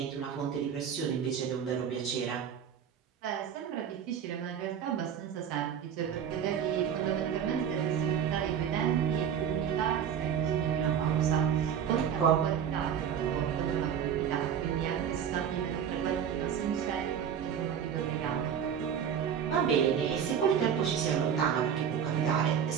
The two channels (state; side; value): quieter; left; 8.3 dB